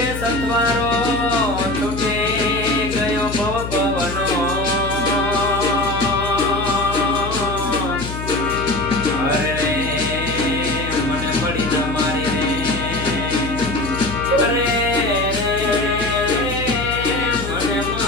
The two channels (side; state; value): left; noise; hum, 7 dB below the sound